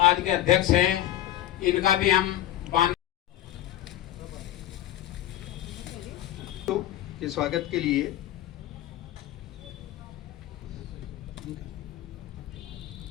के अध्यक्ष हैं, इनका भी हम के स्वागत के लिए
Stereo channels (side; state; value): right; quieter; 13.5 dB